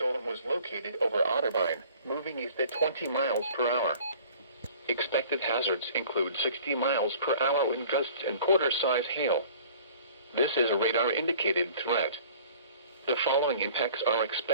was located over Otterbein, moving east at 20 miles per hour. Expected hazards include 60 miles per hour wind gusts and quarter-size hail. This is a radar-indicated threat. The following impacts are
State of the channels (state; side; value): inverted; both; correlation -0.48